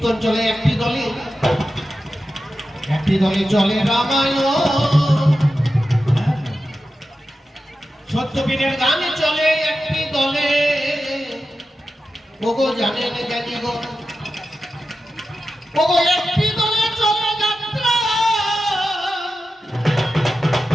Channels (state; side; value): normal; both; correlation 0.92